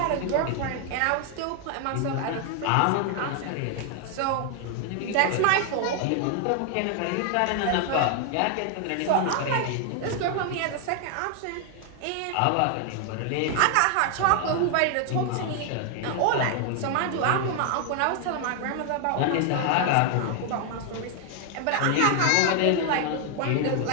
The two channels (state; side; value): different; both; correlation 0.00